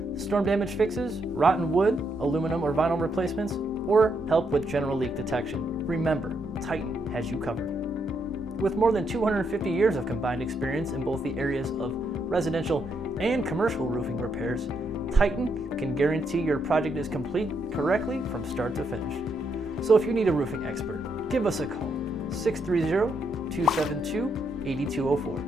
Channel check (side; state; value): both; normal; correlation 0.78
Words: storm damage fixes, rotten wood, aluminum or vinyl replacements, or help with general leak detection, remember, Titan has you covered. With more than 250 years of combined experience in both the areas of residential and commercial roofing repairs, Titan can guarantee your project is complete correctly from start to finish. So if you need a roofing expert, give us a call,